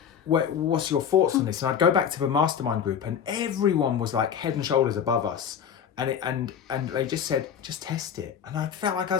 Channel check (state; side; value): quieter; right; 8.1 dB